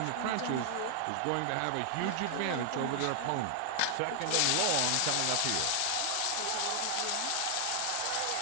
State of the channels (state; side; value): different; both; correlation 0.00